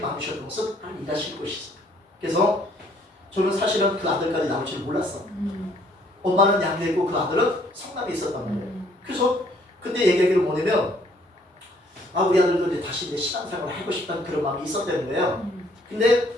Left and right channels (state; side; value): normal; both; correlation 0.63